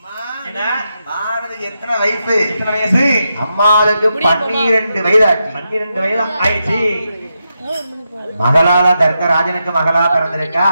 அம்மாளுக்கு 12 வயதாச்சு. 12 வயது ஆயிடுச்சு. மகளால தர்க்கராஜனுக்கு மகளா பிறந்திருக்கா.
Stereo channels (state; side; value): inverted; both; correlation -0.86